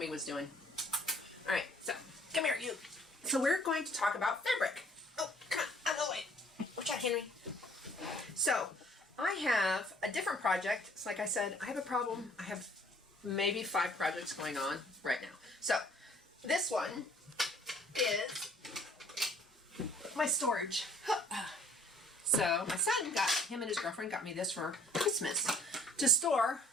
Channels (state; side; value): normal; both; correlation 0.58